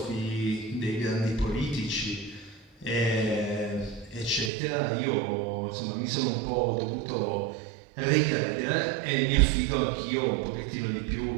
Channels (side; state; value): left; drops out; at 4.5 s